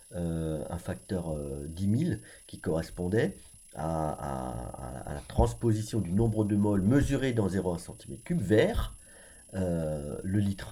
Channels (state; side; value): identical; both; correlation 1.00